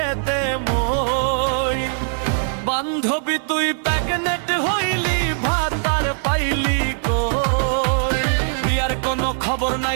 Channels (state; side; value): silent; left; 65 dB below the other